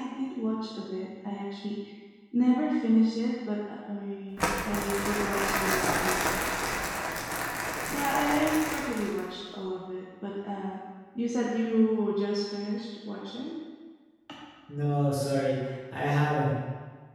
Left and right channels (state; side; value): identical; both; correlation 1.00